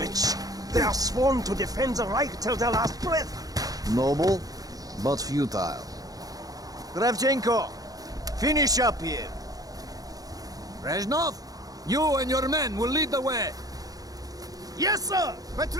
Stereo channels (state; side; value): late; left; 0.18 ms